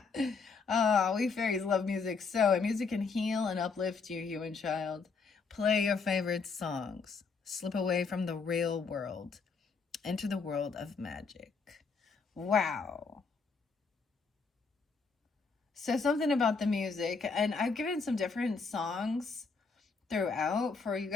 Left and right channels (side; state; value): right; quieter; 4.8 dB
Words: Oh, we fairies love music so. And music can heal and uplift you, human child. Play your favorite songs. Slip away from the real world. Enter the world of magic. Wow. So something about the music. And I've given some different songs throughout for you